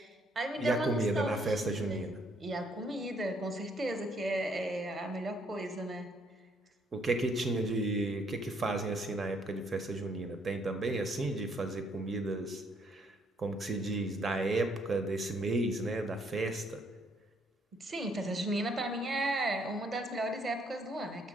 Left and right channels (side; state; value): both; normal; correlation 0.68